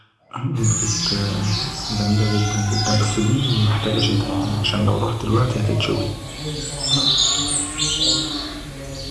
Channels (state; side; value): identical; both; correlation 1.00